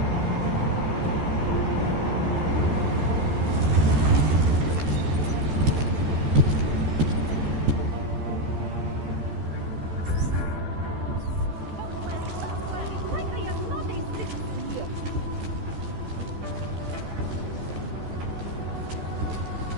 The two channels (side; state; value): left; late; 13 ms